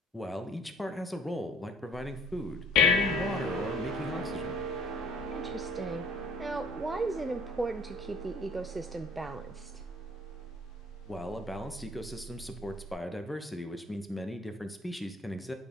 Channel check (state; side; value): normal; both; correlation 0.54